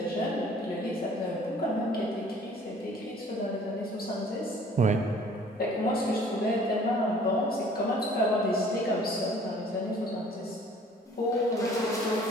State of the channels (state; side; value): normal; both; correlation 0.53